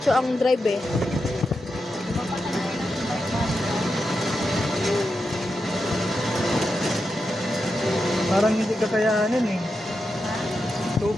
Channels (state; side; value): normal; both; correlation 0.88